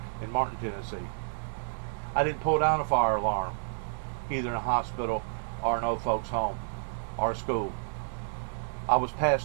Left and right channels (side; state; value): left; silent; digital silence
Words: in Martin, Tennessee. I didn't pull down a fire alarm, either in a hospital or an old folks' home or a school. I was